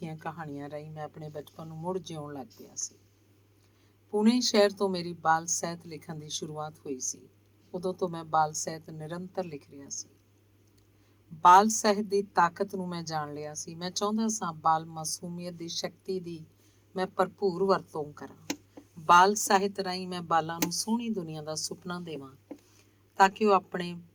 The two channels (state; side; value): identical; both; correlation 1.00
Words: ਕਹਾਣੀਆਂ ਰਾਹੀਂ ਮੈਂ ਆਪਣੇ ਬਚਪਨ ਨੂੰ ਮੁੜ ਜਿਉਣ ਲੱਗ ਪਿਆ ਸੀ। ਪੁਣੇ ਸ਼ਹਿਰ ਤੋਂ ਮੇਰੀ ਬਾਲ ਸਾਹਿਤ ਲਿਖਣ ਦੀ ਸ਼ੁਰੂਆਤ ਹੋਈ ਸੀ। ਉਦੋਂ ਤੋਂ ਮੈਂ ਬਾਲ ਸਾਹਿਤ ਨਿਰੰਤਰ ਲਿਖ ਰਿਹਾ ਸੀ। ਬਾਲ ਸਾਹਿਤ ਦੀ ਤਾਕਤ ਨੂੰ ਮੈਂ ਜਾਣ ਲਿਆ ਸੀ। ਮੈਂ ਚਾਹੁੰਦਾ ਸਾਂ ਬਾਲ ਮਾਸੂਮੀਅਤ ਦੀ ਸ਼ਕਤੀ ਦੀ ਮੈਂ ਭਰਪੂਰ ਵਰਤੋਂ ਕਰਾਂ। ਬਾਲ ਸਾਹਿਤ ਰਾਹੀਂ ਮੈਂ ਬਾਲਾਂ ਨੂੰ ਸੋਹਣੀ ਦੁਨੀਆ ਦਾ ਸੁਪਨਾ ਦੇਵਾਂ, ਤਾਂ ਕਿ ਉਹ